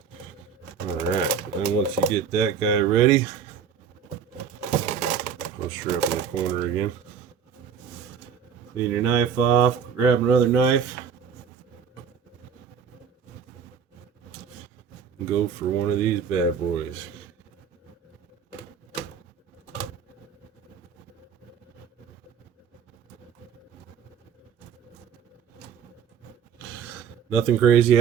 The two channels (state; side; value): quieter; left; 7.3 dB